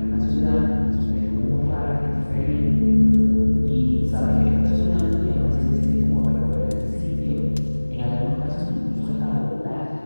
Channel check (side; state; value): both; inverted; correlation -1.00